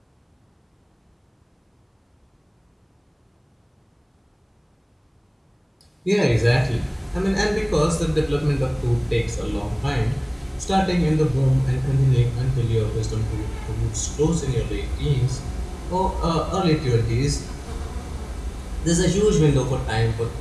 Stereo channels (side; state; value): both; identical; correlation 1.00